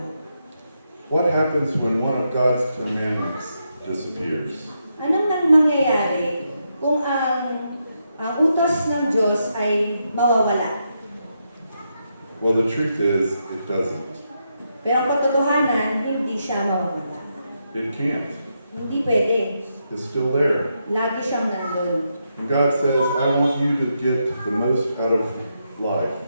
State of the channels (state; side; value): inverted; both; correlation -0.82